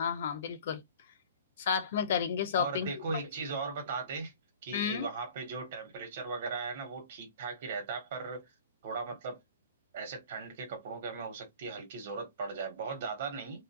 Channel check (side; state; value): both; inverted; correlation -0.45